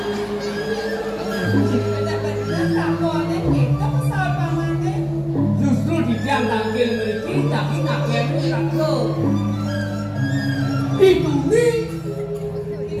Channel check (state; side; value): identical; both; correlation 1.00